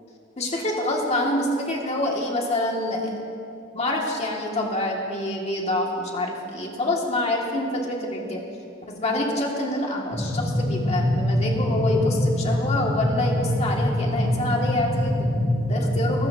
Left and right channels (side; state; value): both; normal; correlation 0.53